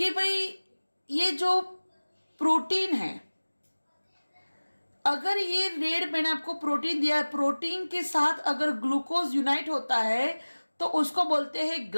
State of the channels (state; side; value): inverted; both; correlation -1.00